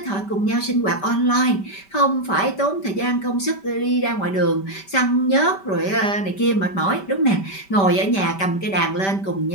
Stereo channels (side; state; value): right; late; 5.1 ms